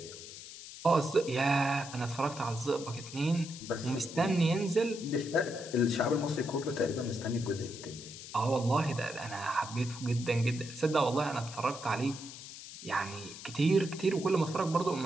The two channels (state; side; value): noise; left; hiss, 13 dB below the sound